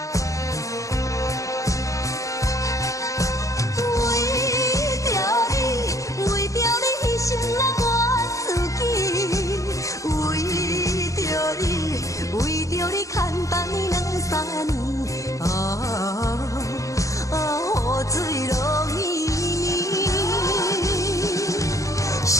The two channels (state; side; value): late; right; 0.16 ms